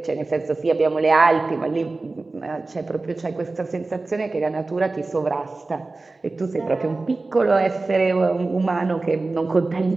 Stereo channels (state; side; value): quieter; left; 3.4 dB